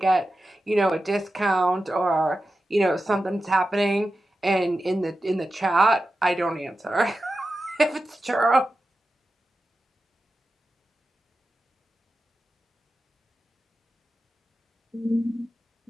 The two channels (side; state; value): both; normal; correlation 0.92